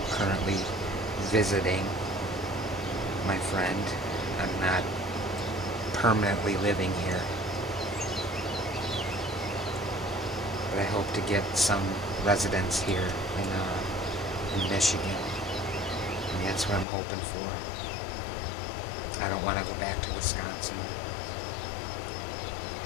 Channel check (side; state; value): right; drops out; at 16.9 s